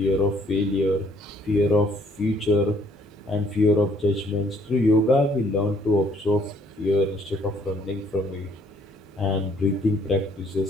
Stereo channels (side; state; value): both; normal; correlation 0.64